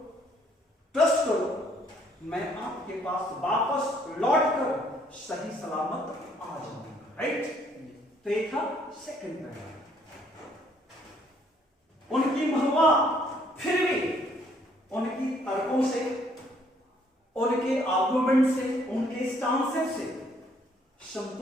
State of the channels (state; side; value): normal; both; correlation 0.65